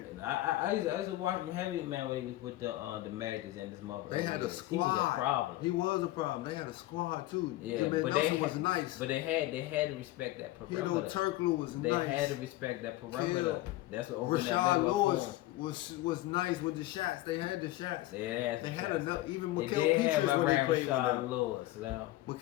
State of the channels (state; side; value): quieter; right; 16.9 dB